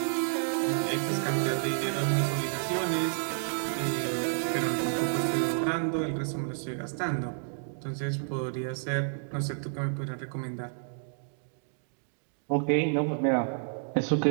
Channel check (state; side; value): silent; left; digital silence